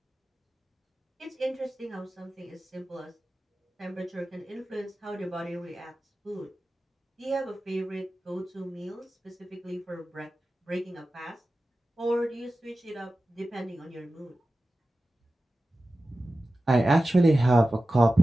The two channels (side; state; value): both; normal; correlation 0.94